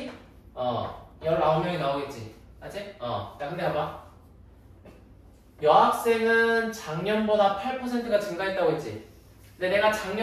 19명이 나오겠지. 맞지? 야 근데 봐봐. 여학생은 작년보다 8%가 증가했다고 했지. 근데 내가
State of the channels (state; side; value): identical; both; correlation 1.00